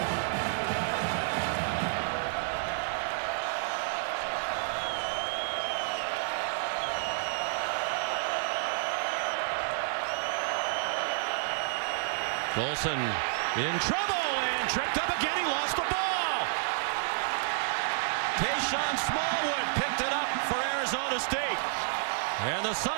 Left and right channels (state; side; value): silent; left; 58 dB below the other